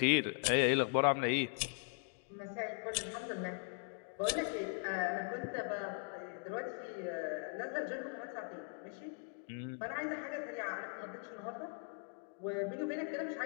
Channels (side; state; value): right; silent; 51 dB below the other